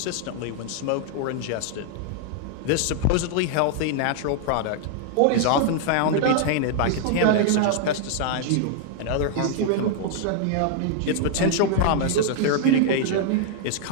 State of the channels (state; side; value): different; both; correlation -0.01